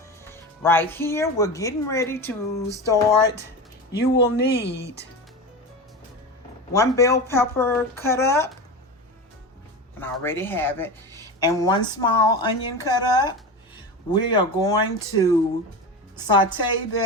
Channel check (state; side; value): normal; both; correlation 0.25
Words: Right here, we're getting ready to start. You will need 1 bell pepper cut up, and I already have it, and 1 small onion cut up. We are going to saute